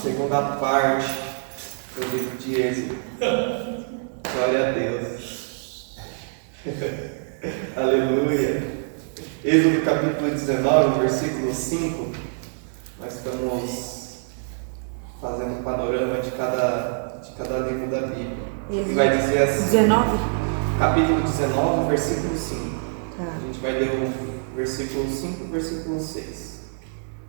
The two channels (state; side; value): silent; left; digital silence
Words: parte do livro de Êxodo. Glória a Deus. Aleluia. Êxodo capítulo 19, versículo 5. Nós estamos fazendo um panorama de cada livro da Bíblia. E vai dizer assim: 19? Capítulo 19, versículo 5. Tá. A gente vai ler o versículo 5 e o versículo 6.